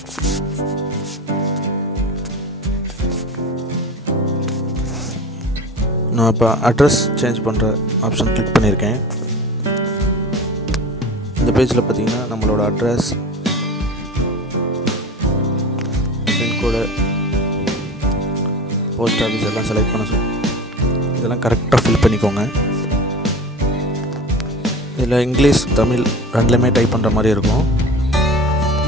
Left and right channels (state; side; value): normal; both; correlation 0.35